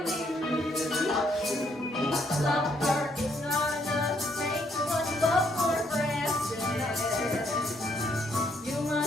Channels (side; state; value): both; normal; correlation 0.71